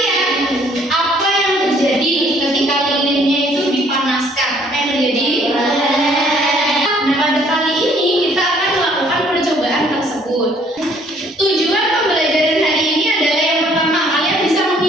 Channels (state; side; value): normal; both; correlation 0.61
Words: apa yang terjadi ketika lilinnya itu dipanaskan? Apa yang terjadi? Nah, pada kali ini kita akan melakukan percobaan tersebut. Tujuan pembelajaran hari ini adalah yang pertama, kalian bisa